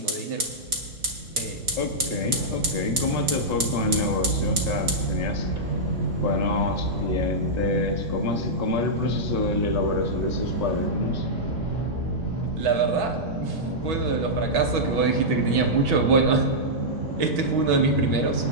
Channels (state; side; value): late; left; 4.6 ms